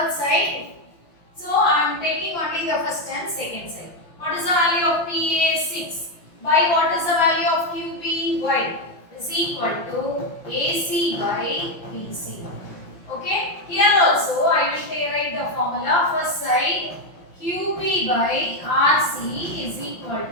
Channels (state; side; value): late; right; 5.8 ms